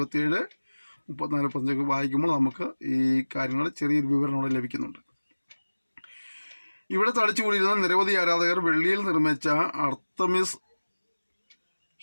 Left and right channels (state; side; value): inverted; both; correlation -1.00